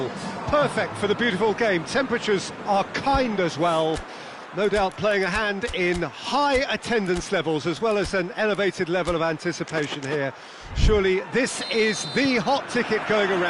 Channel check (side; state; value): both; identical; correlation 1.00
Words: Perfect for the beautiful game. Temperatures are kind as well. No doubt playing a hand in high attendance levels as well as an elevated level of anticipation here. Surely this is the hot ticket going